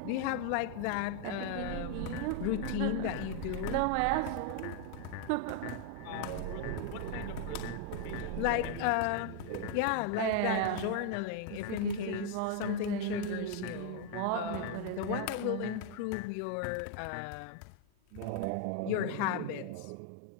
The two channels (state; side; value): different; both; correlation 0.00